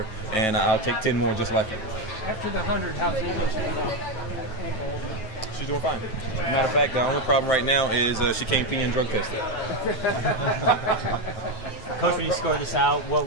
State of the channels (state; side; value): late; right; 9.2 ms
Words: and I'll take 10 more just like her. After the 100, how's the ankle? She's doing fine. Matter of fact, the only problem right now is she can't pee and drug test it. Coach, when you score this out,